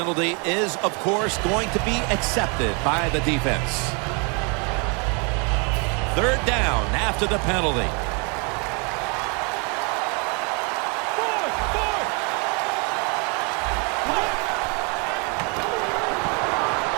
is, of course, going to be accepted by the defense. 3rd down after the penalty.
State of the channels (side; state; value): left; quieter; 34.1 dB